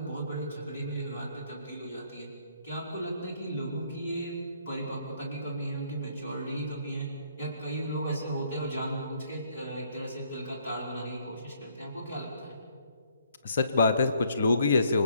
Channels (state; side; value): inverted; both; correlation -0.67